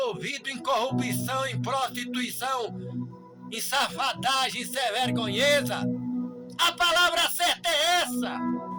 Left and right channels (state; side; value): identical; both; correlation 1.00